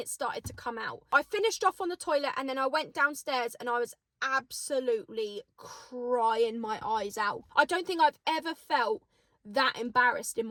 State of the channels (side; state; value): both; identical; correlation 1.00